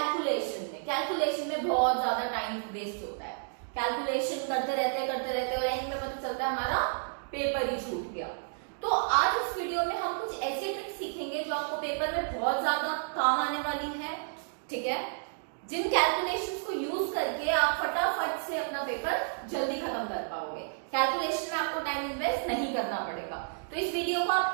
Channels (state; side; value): silent; left; digital silence